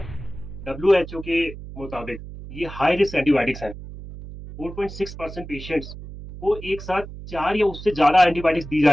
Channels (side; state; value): right; noise; hum, 12 dB below the sound